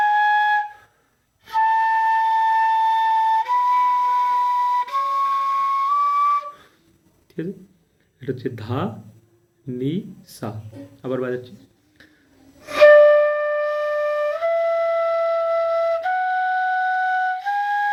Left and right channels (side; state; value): both; identical; correlation 1.00